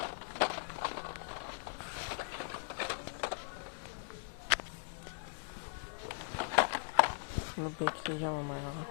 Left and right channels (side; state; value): right; silent; digital silence